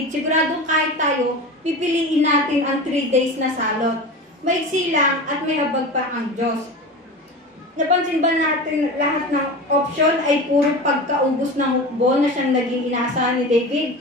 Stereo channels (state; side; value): normal; both; correlation 0.30